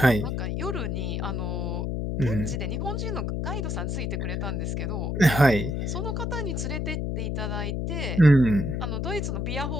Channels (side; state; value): left; noise; hum, 1 dB below the sound